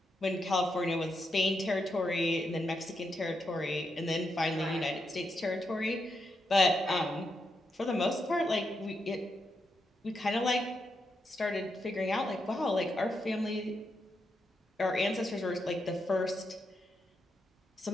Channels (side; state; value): both; normal; correlation 0.83